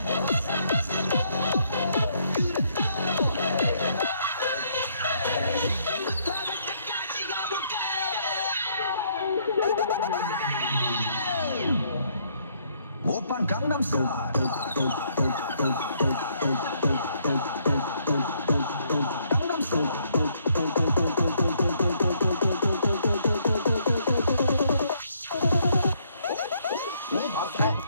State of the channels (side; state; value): both; inverted; correlation -0.69